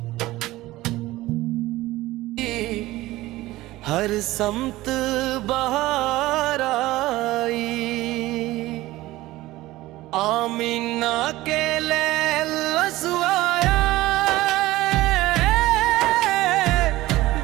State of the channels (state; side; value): quieter; left; 17.6 dB